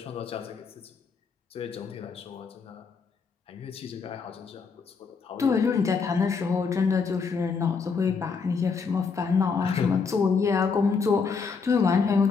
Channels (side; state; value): right; quieter; 5.3 dB